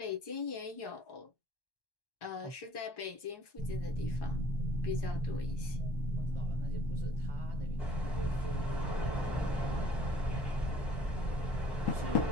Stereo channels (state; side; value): late; right; 1.1 ms